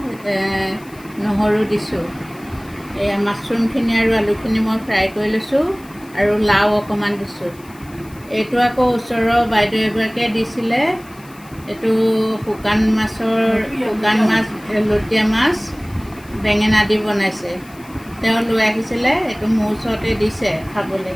নহৰু দিছোঁ। এয়া মাছৰুমখিনি আৰু আলুখিনি মই ফ্ৰাই কৰি লৈছোঁ আৰু লাও অকণমান দিছোঁ। এইটো আকৌ ওচৰৰ বাইদেউ এগৰাকীয়ে দিছিলে। এইটো শুকান মাছ, লুটীয়া মাছ, বেঙেনা দি বনাইছে। তেওঁ লৈ আহিছিলে, এইটো মোৰ ওচৰতে দিছে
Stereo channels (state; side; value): noise; left; hiss, 25 dB below the sound